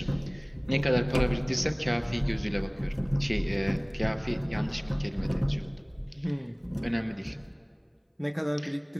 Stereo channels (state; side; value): identical; both; correlation 1.00